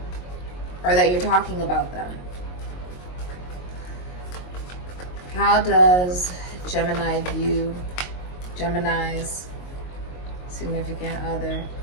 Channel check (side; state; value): right; late; 22 ms